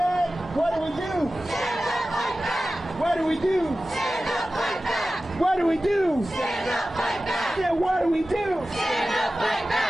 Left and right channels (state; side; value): normal; both; correlation 0.95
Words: what do we do? Stand up, fight back. What do we do? Stand up, fight back. What do we do? Stand up, fight back. Yeah, what do we do? Stand up, fight